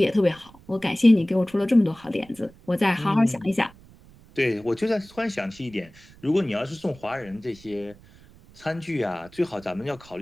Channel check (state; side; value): noise; right; rumble, 24 dB below the sound